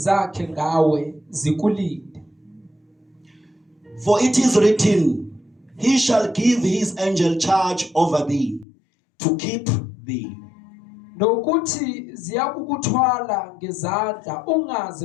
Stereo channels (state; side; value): drops out; right; at 8.7 s